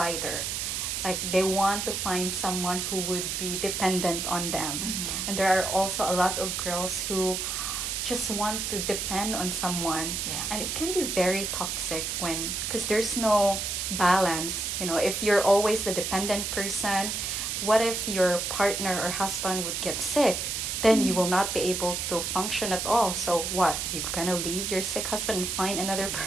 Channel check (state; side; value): noise; right; hiss, 2 dB below the sound